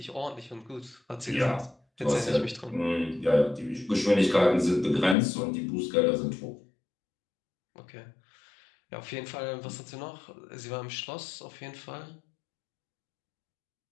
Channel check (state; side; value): drops out; right; at 5.2 s